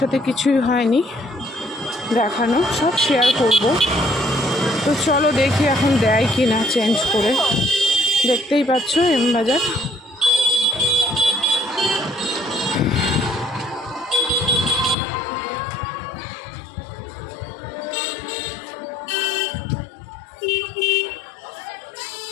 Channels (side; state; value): right; drops out; at 15.0 s